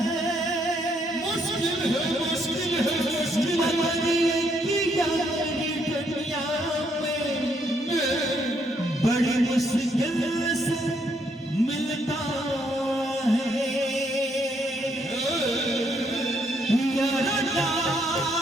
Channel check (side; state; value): both; normal; correlation 0.73